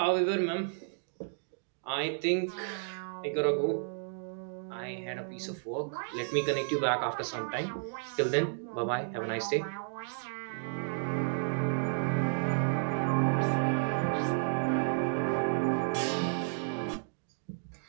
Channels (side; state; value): left; silent; digital silence